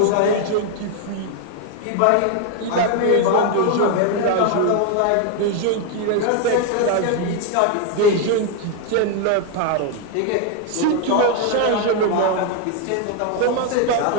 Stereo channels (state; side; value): different; both; correlation 0.01